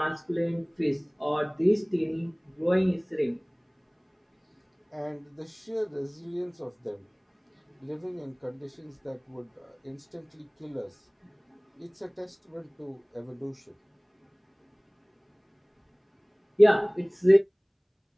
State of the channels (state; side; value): identical; both; correlation 1.00